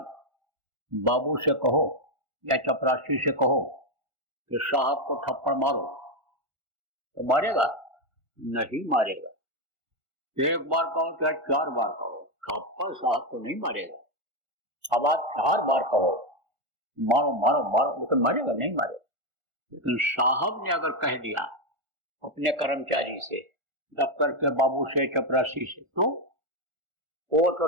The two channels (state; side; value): late; left; 1.4 ms